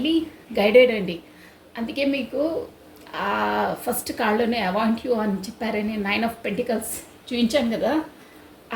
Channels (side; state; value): both; identical; correlation 1.00